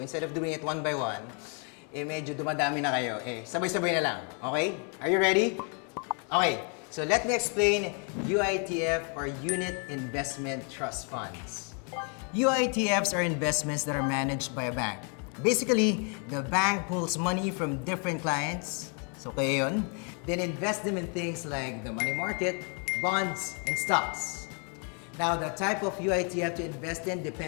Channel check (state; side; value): quieter; right; 38.8 dB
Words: instead of doing it one by one, medyo dumadami na kayo. Sabay-sabay na lang. Okay? Are you ready? Okay, so let me explain UITF or Unit Investment Trust Funds. UITFs are investments that are managed by a bank. Basically, the bank pulls money from different clients, so kayo yun, then invest them in things like the money market, bonds, and stocks. Now, the type of UITF to invest in